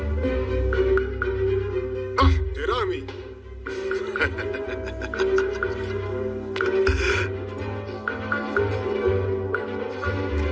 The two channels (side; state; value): both; identical; correlation 1.00